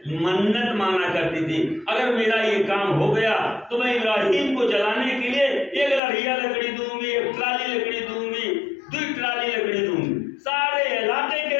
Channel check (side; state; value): right; drops out; at 6.0 s